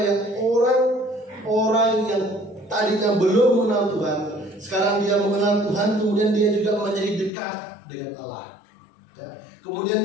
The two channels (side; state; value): right; drops out; at 7.3 s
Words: orang-orang yang tadinya belum mengenal Tuhan, sekarang dia mengenal Tuhan, kemudian dia juga menjadi dekat dengan Allah. Ya. Kemudian